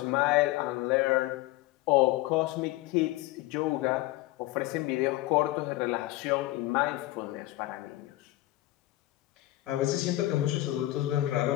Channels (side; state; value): right; quieter; 17.5 dB